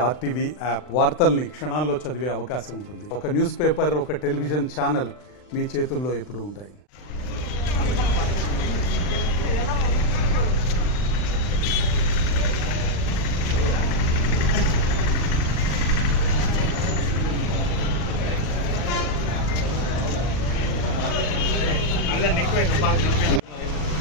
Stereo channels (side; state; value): right; late; 40 ms